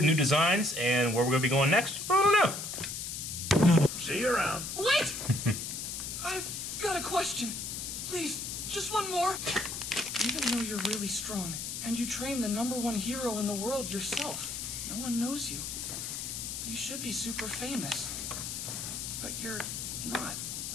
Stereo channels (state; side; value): noise; left; hiss, 5 dB below the sound